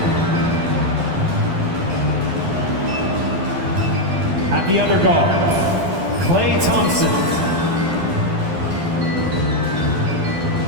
At the other guard, Klay Thompson.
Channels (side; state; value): left; late; 12 ms